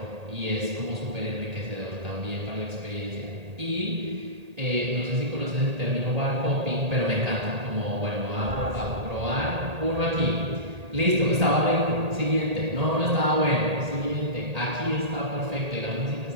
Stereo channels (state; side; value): late; left; 1.8 ms